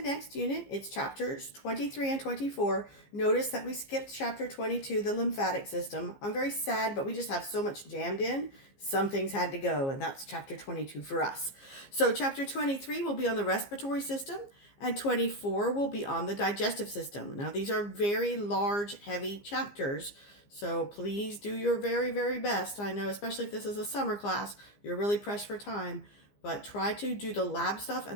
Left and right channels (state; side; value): late; right; 15 ms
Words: unit. It's chapters 23 and 24. Notice that we skipped chapter 22, the lymphatic system. I'm very sad, but we just have so much jammed in. Some things had to go, and that's chapter 22 for us. So chapter 23 will be on the respiratory system, and 24 will be on the digestive system. Now these are very large, heavy chapters, so please do your very, very best. I know, especially if this is a summer class, you're really pressed for time. But try to do the lab stuff